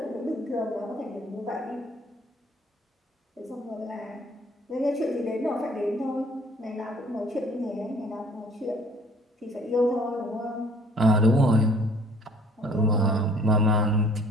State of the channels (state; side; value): normal; both; correlation 0.55